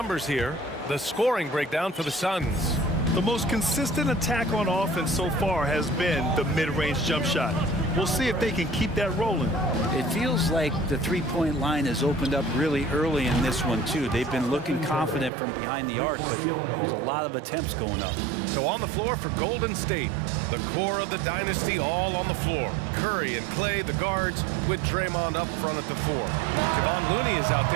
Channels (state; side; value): drops out; left; at 15.3 s